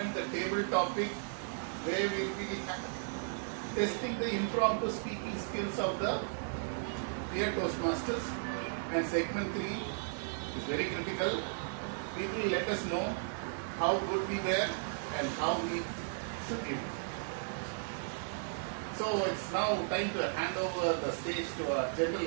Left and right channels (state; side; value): silent; left; 54 dB below the other